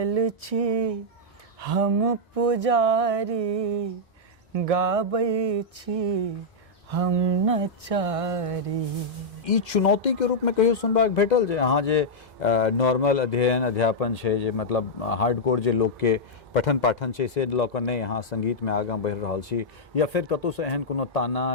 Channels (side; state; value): both; normal; correlation -0.07